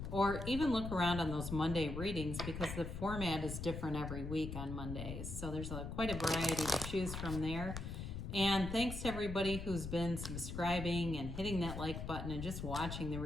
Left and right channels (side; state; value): left; noise; rumble, 6 dB below the sound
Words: or even look around on those Monday readings because the format is different every week on Mondays. So there's quite a variety to choose from there. And thanks to everybody who's been subscribing and hitting that like button and just watching the